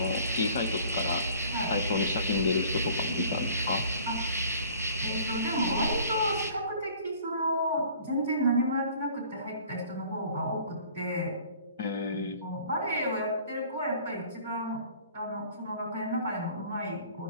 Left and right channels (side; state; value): both; inverted; correlation -0.51